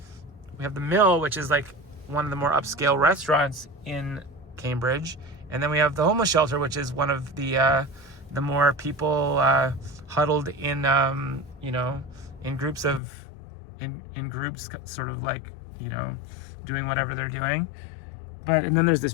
mill, which is like one of the more upscale restaurants in Cambridge, and then we have the homeless shelter, which is one of the more people huddled in in groups sort of like doing whatever they're doing. And then there's this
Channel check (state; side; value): drops out; right; at 13.0 s